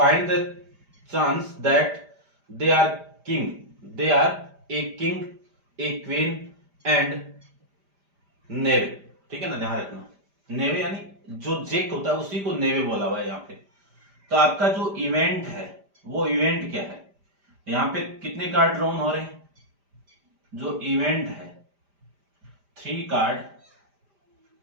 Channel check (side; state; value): left; late; 5.0 ms